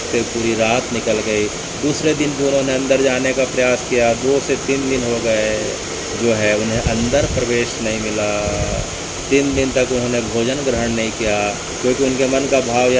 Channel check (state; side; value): identical; both; correlation 1.00